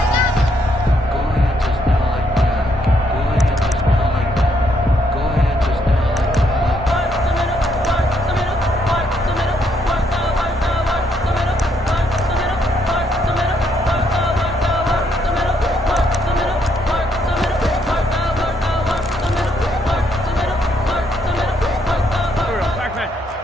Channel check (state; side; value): normal; both; correlation 0.73